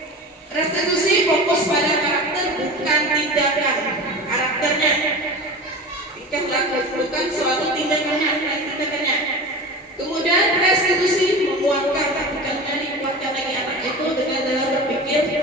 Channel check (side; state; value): both; normal; correlation 0.32